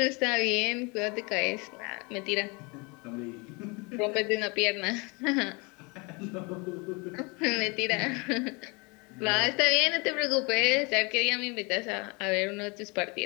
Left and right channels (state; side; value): quieter; right; 28.9 dB